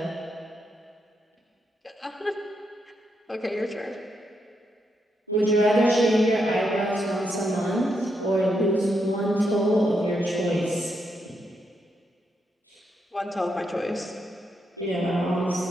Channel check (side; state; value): both; normal; correlation 0.81